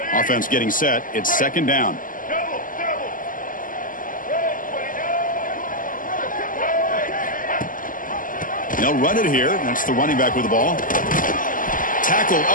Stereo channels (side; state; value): right; late; 0.39 ms